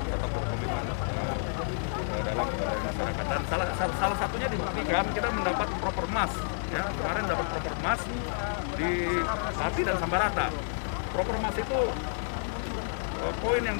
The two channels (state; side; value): silent; right; digital silence